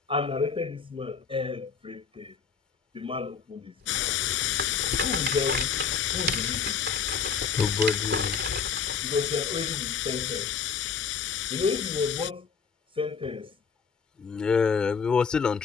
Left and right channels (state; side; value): quieter; right; 6.1 dB